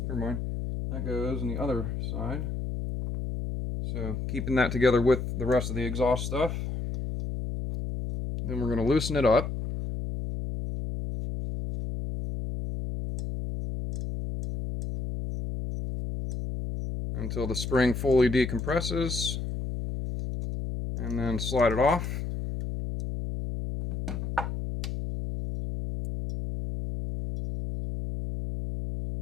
Never mind. That goes on the other side. So keeping that together with the rest of the exhaust stuff. Then we're going to loosen it up. Until the spring fully decompresses. And then slide it off.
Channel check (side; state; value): left; noise; hum, 4 dB below the sound